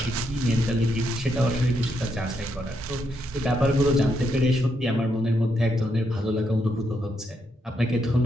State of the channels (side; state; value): both; normal; correlation 0.79